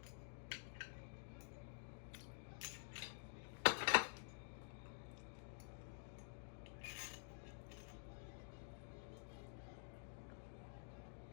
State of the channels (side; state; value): right; silent; digital silence